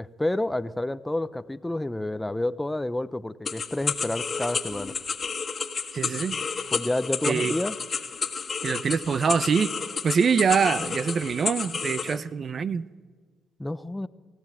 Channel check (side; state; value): both; normal; correlation 0.85